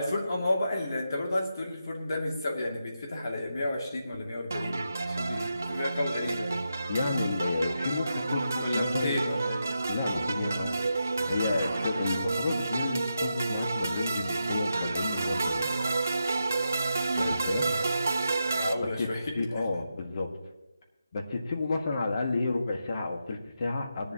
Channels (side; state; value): both; inverted; correlation -0.86